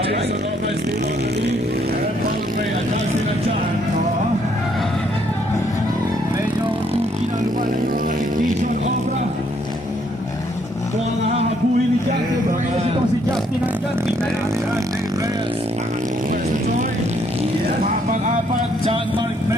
Jason Obra still on the lead. And followed by Adalcin Achan. Medyo tuki na lumalay yung Jason Obra. Ito ang hahabulin ni Justin Reyes. Ito si Justin Achan. Tingnan natin. Dave Reyes. First Joy. Pang-apat, John Mark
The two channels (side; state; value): both; normal; correlation 0.69